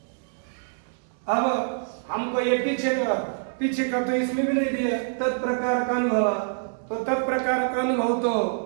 अब हमको ये पीछे का तो इसमें भी नहीं दिया तत्प्रकार का अनुभव, तो तत्प्रकार का अनुभव तो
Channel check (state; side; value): silent; left; digital silence